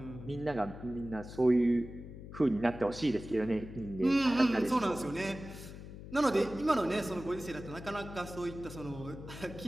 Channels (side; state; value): left; noise; hum, 13 dB below the sound